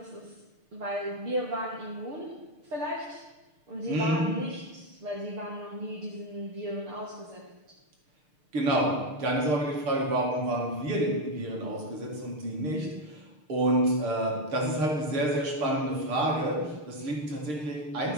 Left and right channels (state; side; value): late; left; 6.6 ms